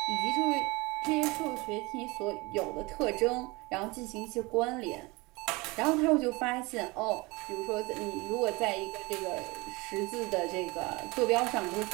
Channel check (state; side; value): quieter; left; 24.4 dB